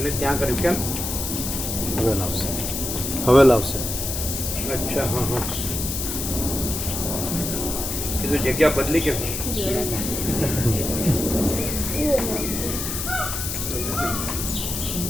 ત્યાં કર્યું કેમ? હવે લાવશે. હવે લાવશે. અચ્છા હા હા કીધું જગ્યા બદલી કેમ?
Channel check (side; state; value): left; noise; hiss, 3 dB below the sound